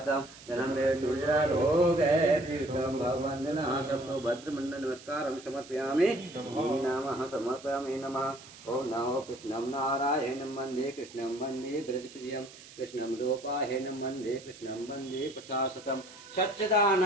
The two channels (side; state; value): right; noise; hiss, 19 dB below the sound